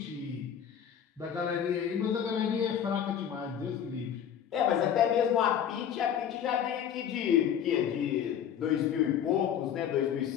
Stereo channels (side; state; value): right; quieter; 8.9 dB